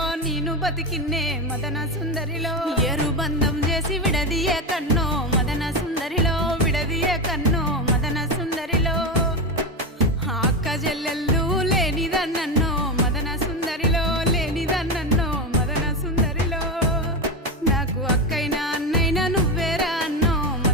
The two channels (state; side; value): normal; both; correlation 0.16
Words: ನೀನು బతికిన్నే మదన సుందరిలో ఏరు బంధం చేసి విడదీయే కన్నో మదన సుందరిలో విడదీయే కన్నో మదన సుందరిలో అక్క చెల్లెళ్ళు లేనిదన్నో మదన సుందరిలో లేనిదన్నో మదన సుందరిలో నాకు అక్కైనా అన్నైనా నువ్వేరా అన్నో